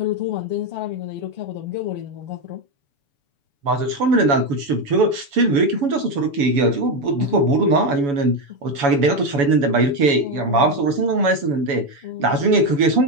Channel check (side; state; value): left; late; 7.0 ms